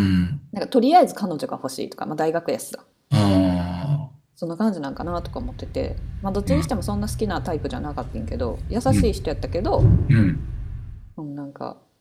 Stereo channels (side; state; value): both; identical; correlation 1.00